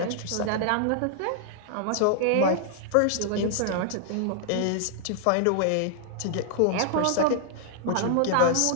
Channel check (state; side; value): different; both; correlation -0.01